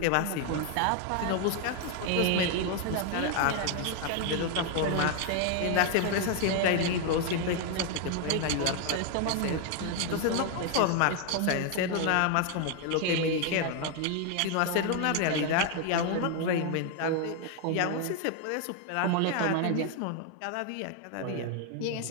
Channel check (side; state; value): both; different; correlation 0.01